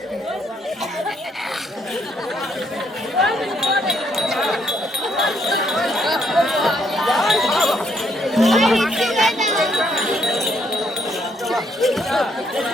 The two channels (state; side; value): normal; both; correlation 0.72